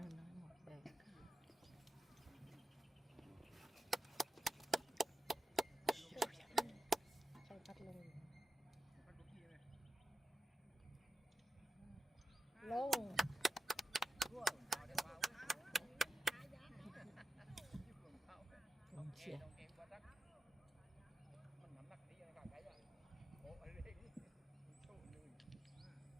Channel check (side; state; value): both; normal; correlation 0.89